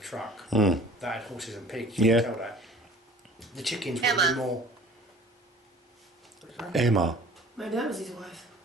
truck, Mm. that had horses and pigs, you Yeah. can tell that. The chickens would Emma. be more... Emma, Maybe that was his wife.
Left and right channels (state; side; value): normal; both; correlation 0.48